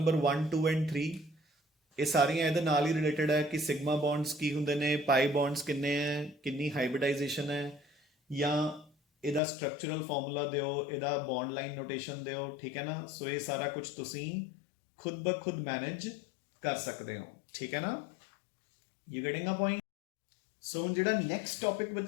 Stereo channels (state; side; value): drops out; right; at 9.4 s